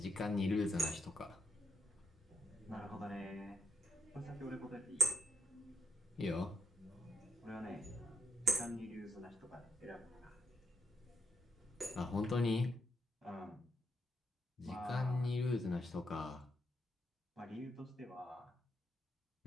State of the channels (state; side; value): normal; both; correlation 0.82